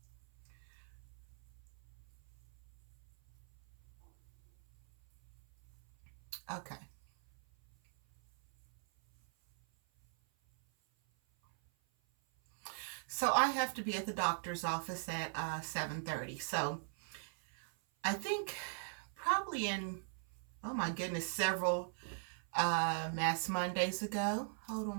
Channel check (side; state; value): left; silent; 50 dB below the other